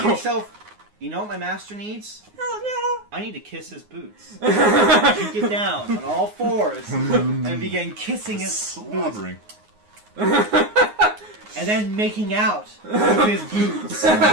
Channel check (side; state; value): left; late; 9.6 ms